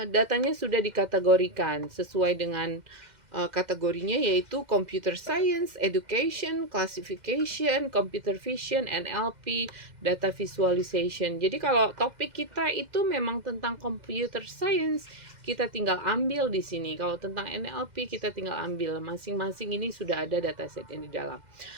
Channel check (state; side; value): late; left; 2.1 ms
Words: datanya sudah dikategorikan sesuai dengan kategorinya, yaitu Computer Science, Education, Classification, Computer Vision, NLP, Data Visualization. Jadi kalau topik kita itu memang tentang Computer Science, kita tinggal ambil di sini. Kalau tentang NLP kita tinggal ambil, masing-masing ini sudah ada dataset yang di dalam.